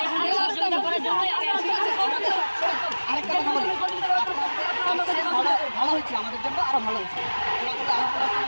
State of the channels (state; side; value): inverted; both; correlation -1.00